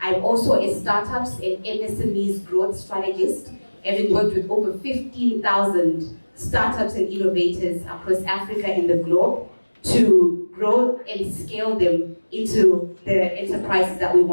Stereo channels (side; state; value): both; inverted; correlation -1.00